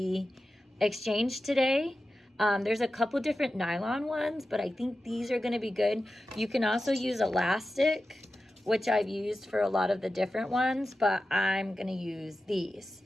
exchange today. There's a couple different nylon ones, but I think these are going to be good. You can also use elastic, which I've used for a lot of the different ones, but I'm going to use these.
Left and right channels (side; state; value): both; normal; correlation 0.93